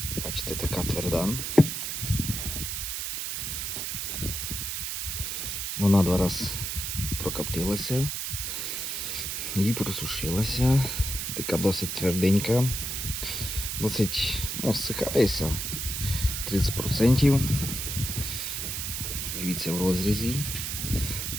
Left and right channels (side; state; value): right; noise; hiss, 3 dB below the sound